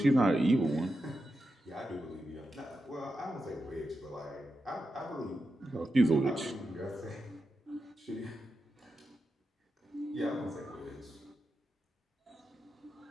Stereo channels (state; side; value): normal; both; correlation 0.89